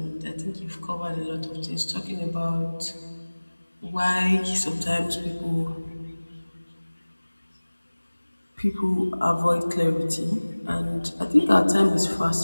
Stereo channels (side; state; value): both; inverted; correlation -1.00